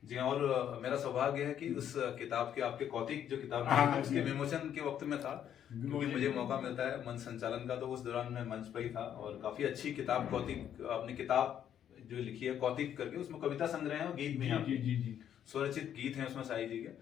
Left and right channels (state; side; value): quieter; right; 9.8 dB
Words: जी, और मेरा सौभाग्य है कि उस किताब के, आपके कौतिक जो किताब हाँ, उसके विमोचन के वक्त में था, क्योंकि मुझे मौका मिलता है मंच संचालन का, तो उस दौरान मैं मंच पर ही था। और काफी अच्छी किताब, कौतिक, अपनी किताब जो लिखी है कौतिक करके, उसमें कविता संग्रह है और गीत भी हैं। जी। स्वरचित गीत हैं उसमें शाही जी के।